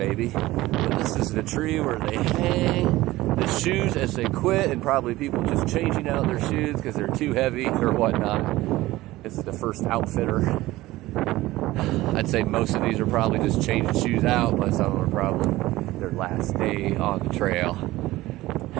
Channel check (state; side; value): quieter; left; 17.7 dB